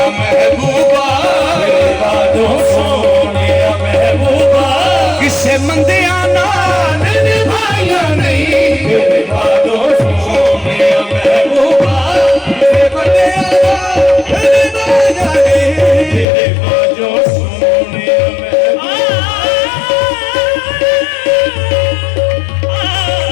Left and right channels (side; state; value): right; drops out; at 16.2 s